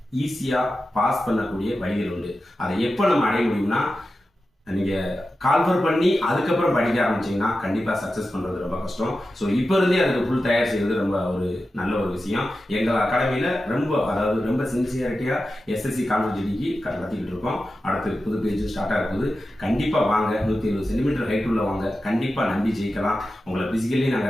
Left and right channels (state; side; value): normal; both; correlation 0.92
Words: ஈஸியாக பாஸ் பண்ணக்கூடிய வழிகள் உண்டு. அதை எப்போ நம்ம அடைய முடியும்னா, நீங்கள் கால்ஃபர் பண்ணி அதுக்கப்புறம் படிக்க ஆரம்பிச்சிங்கன்னா கண்டிப்பாக சக்ஸஸ் பண்ணுறது ரொம்ப கஷ்டம். ஸோ இப்போ இருந்தே அதுக்கு ஃபுல் தயார் செய்கிறது ரொம்ப ஒரு நல்ல ஒரு விஷயம். எங்கள் அகாடமியில் ரொம்ப சின்சியாரிட்டியாக எஸ்எஸ்சி கான்ஸ்டபிள் ஜிடிக்கு நடத்திக்கிட்டு இருக்கோம். அடுத்து புது பேஜ் ஸ்டார்ட் ஆகுது. கண்டிப்பாக வாங்க, 170 சென்டிமீட்டர் ஹைட் உள்ள வாங்க, கண்டிப்பாக நம்பி ஜெயிக்கலாம். உங்களை ஃபிசிக்கலி